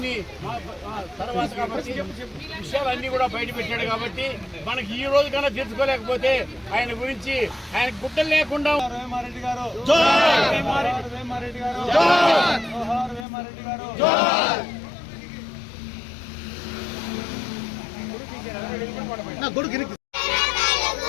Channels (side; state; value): right; drops out; at 13.2 s